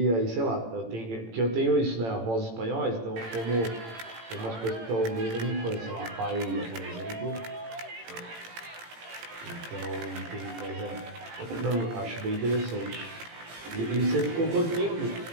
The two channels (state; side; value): late; left; 18 ms